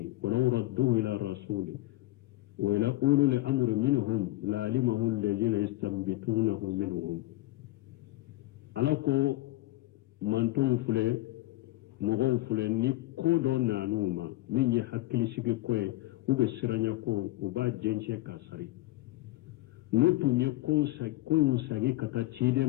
wa law radduhu ila rasuli wa ila ulul amri minhum la alimahu alladhina yastanbitunahu minhum alako manton fule mogo fule ni kodo nanuma min ye hakkili sigi koye ube siranya ko uba jenche kasari notu nye koy musagi kata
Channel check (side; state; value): right; quieter; 18.3 dB